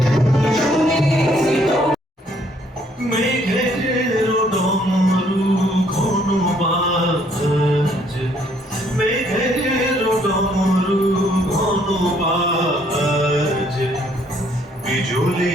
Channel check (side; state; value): both; normal; correlation 0.66